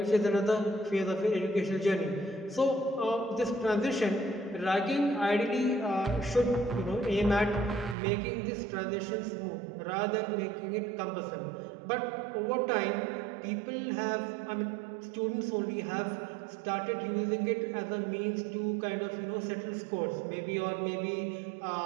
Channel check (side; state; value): left; drops out; at 8.0 s